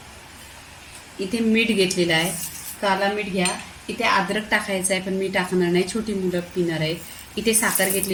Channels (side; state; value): both; identical; correlation 1.00